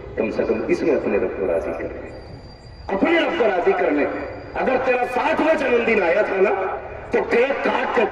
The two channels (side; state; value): both; identical; correlation 1.00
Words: کم سے کم اس میں اپنے رب کو راضی کر لیں, اپنے رب کو راضی کر لیں. اگر تیرا 60واں جنم دن آیا تھا نا تو کیک کاٹ کے